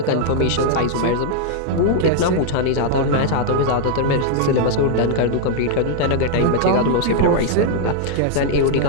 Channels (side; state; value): both; different; correlation -0.01